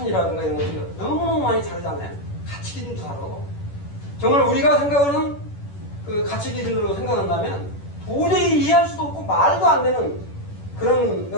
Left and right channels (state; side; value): late; right; 10 ms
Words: 이런 것들이 너무너무 많이 다르잖아요. 가치 기준도 다르고. 정말 우리가 생각하는 그 가치 기준으로 생각한다면 도저히 이해할 수도 없고 말도 안 되는 그런